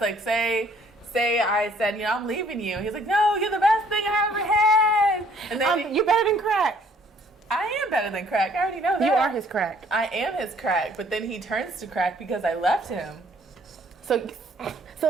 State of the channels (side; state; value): both; normal; correlation 0.61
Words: Like, say I said, I'm leaving you. He's like, no, you're the best thing I ever had. And then you're better than crack. I am better than crack. I already know that. You are his crack. I am his crack. But then he turns to crack because I left him. So